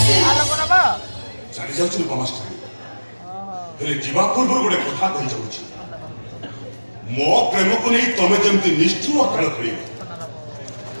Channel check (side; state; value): both; inverted; correlation -1.00